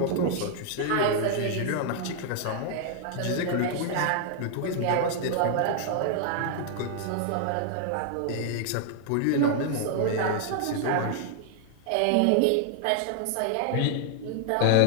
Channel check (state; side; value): different; both; correlation 0.00